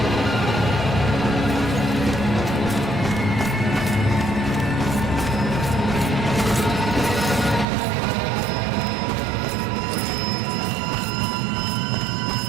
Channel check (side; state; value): left; drops out; at 7.7 s